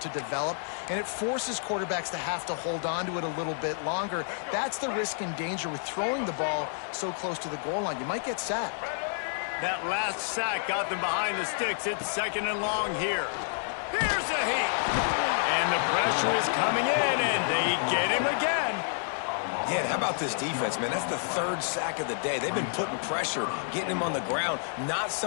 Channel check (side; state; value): right; silent; digital silence